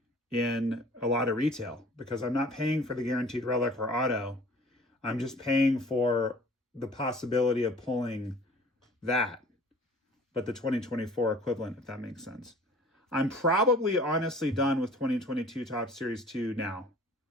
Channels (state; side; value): normal; both; correlation 0.49